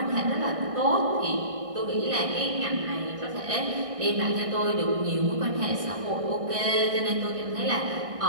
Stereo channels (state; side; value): late; left; 1.6 ms